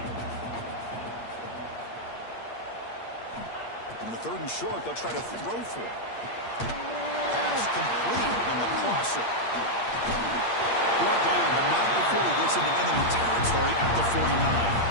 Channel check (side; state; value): right; late; 8.6 ms